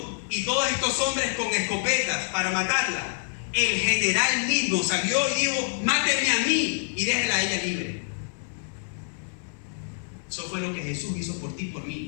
y todos estos hombres con escopetas para matarla, el general mismo salió y dijo: mátenme a mí y déjenla a ella libre. Eso fue lo que Jesús hizo por ti y por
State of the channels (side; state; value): right; silent; 61 dB below the other